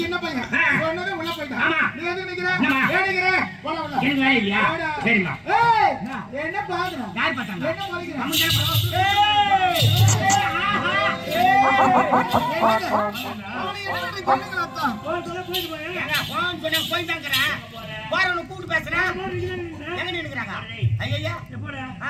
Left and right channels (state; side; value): identical; both; correlation 1.00